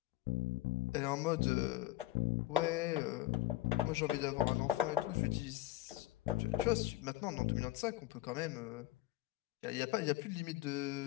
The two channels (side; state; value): right; quieter; 16.1 dB